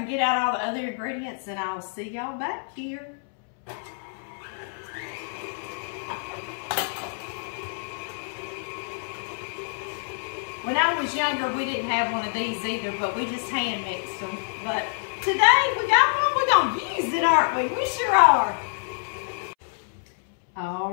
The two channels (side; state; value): right; silent; 60 dB below the other